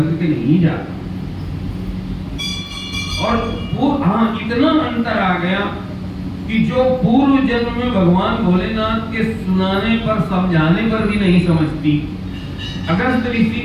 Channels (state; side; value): identical; both; correlation 1.00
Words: के नहीं जाता। और वो इतना अंतर आ गया कि जो पूर्व जन्म में भगवान भोलेनाथ के सुनाने पर समझाने पर भी नहीं समझती, अगस्त ऋषि